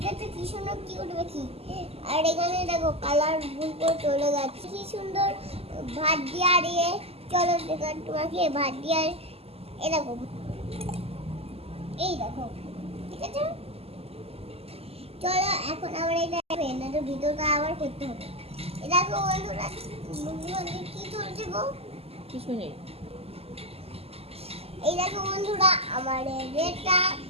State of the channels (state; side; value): late; left; 0.29 ms